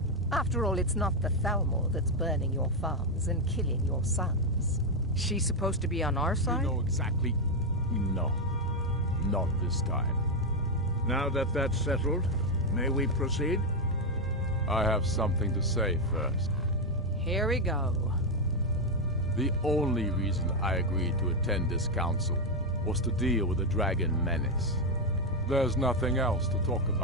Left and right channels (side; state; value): both; normal; correlation 0.04